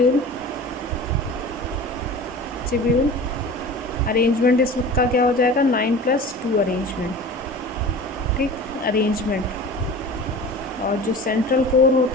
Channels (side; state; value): both; normal; correlation 0.37